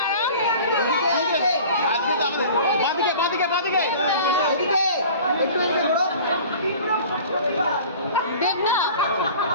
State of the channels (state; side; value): inverted; both; correlation -0.43